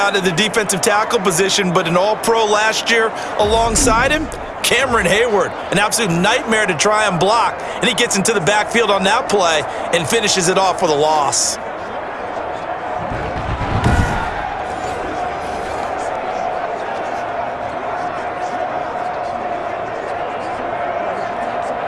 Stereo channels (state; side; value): identical; both; correlation 1.00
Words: at the defensive tackle position, but an all-pro last year alongside him, Cameron Hayward, an absolute nightmare to try and block. And he gets into the backfield on that play and finishes it off with a loss.